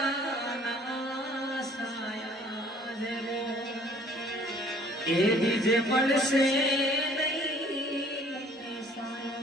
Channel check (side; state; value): both; normal; correlation 0.56